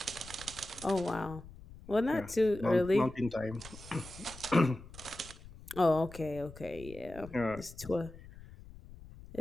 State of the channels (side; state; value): left; noise; rumble, 17 dB below the sound